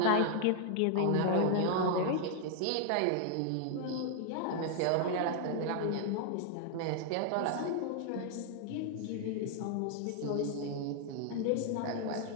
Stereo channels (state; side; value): different; both; correlation 0.00